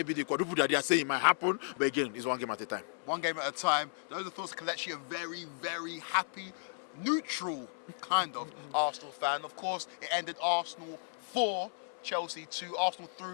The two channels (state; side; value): silent; right; 55 dB below the other